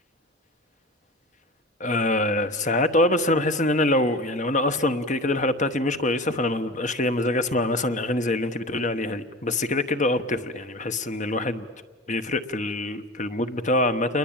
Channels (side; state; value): both; normal; correlation 0.32